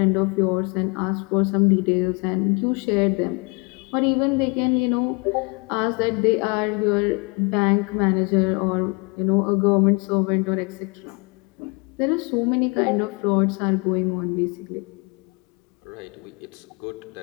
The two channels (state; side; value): quieter; right; 30.7 dB